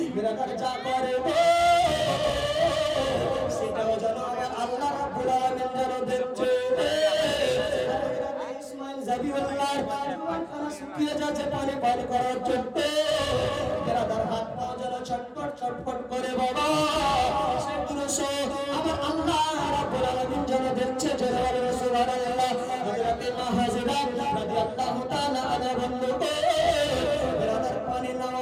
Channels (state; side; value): identical; both; correlation 1.00